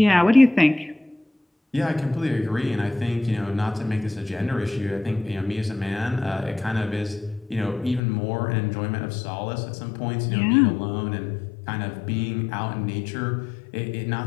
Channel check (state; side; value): drops out; right; at 8.0 s